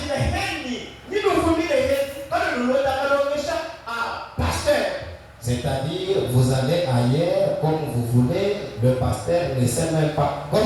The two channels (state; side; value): identical; both; correlation 1.00